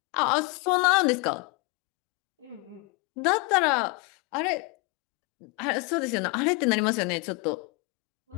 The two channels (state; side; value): quieter; right; 27.9 dB